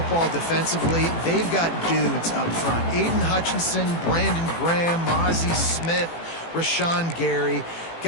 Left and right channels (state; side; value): late; right; 18 ms